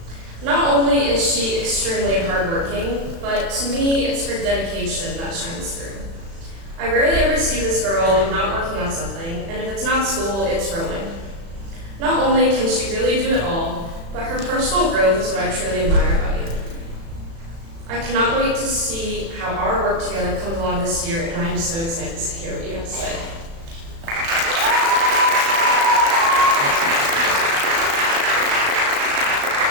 Not only is she extremely hardworking, but to me, it's her dedication that shines through. I rarely ever see this girl not working on something, and if it's not school, it's rowing. Not only can she really do it all, but her personal growth is what I truly admire about you. I cannot wait to see how our work together comes along this year, and I'm so excited to hear what you have to say.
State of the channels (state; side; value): late; left; 36 ms